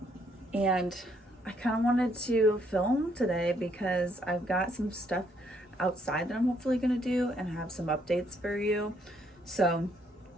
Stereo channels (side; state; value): both; normal; correlation 0.70